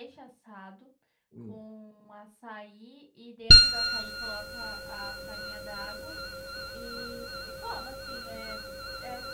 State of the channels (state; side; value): identical; both; correlation 1.00